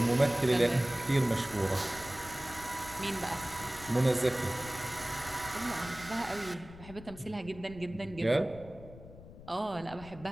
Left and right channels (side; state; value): left; noise; rumble, 17 dB below the sound